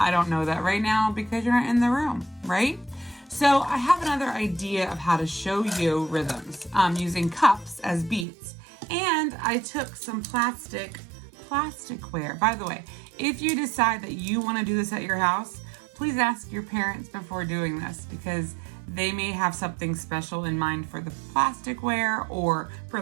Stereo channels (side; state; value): left; drops out; at 8.2 s